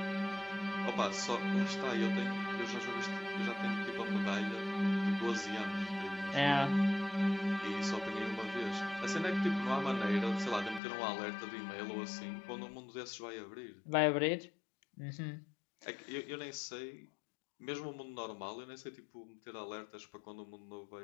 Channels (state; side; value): drops out; right; at 10.8 s